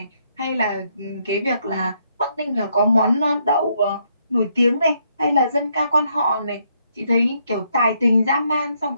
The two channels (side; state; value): both; inverted; correlation -0.74